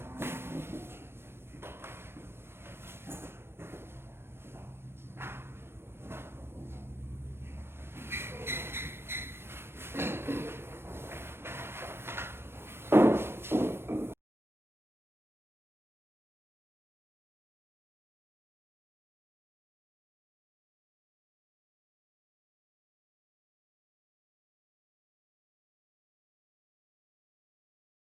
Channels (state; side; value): late; left; 0.12 ms